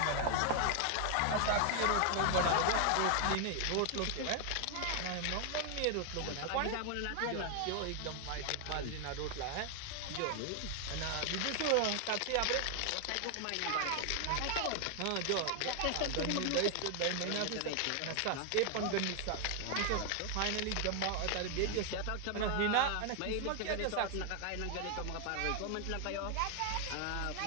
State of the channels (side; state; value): both; different; correlation 0.00